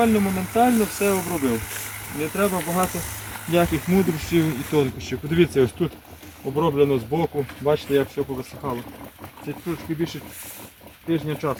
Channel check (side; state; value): both; identical; correlation 1.00